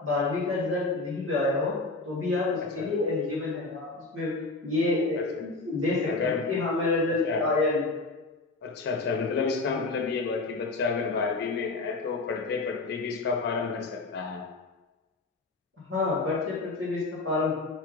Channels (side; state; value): right; quieter; 3.4 dB